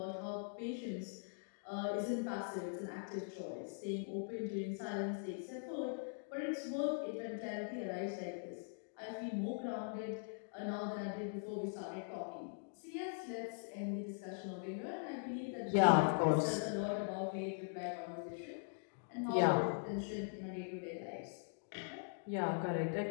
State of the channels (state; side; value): silent; right; digital silence